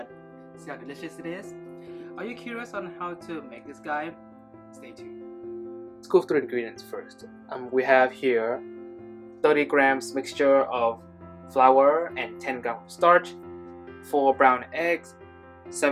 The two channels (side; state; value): both; identical; correlation 1.00